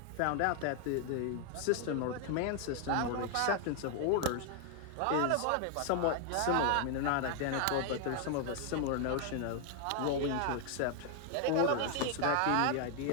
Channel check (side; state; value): both; different; correlation 0.00